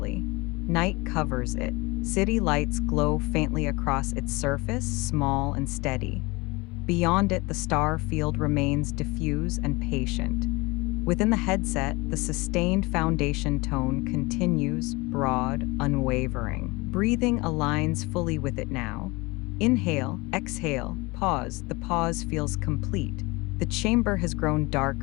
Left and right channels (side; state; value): right; quieter; 24.3 dB